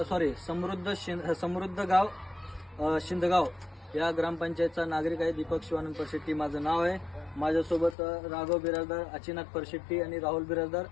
समृद्ध गाव शिंदगाव या ग्रामपंचायतचा नागरिक आहे. दीपक शिवानंद परशेट्टी माझं नाव आहे. माझ्यासोबत राघव बिराजदार, अचिनाथ परशेट्टी आणि राहुल बिराजदार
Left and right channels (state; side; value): drops out; right; at 8.0 s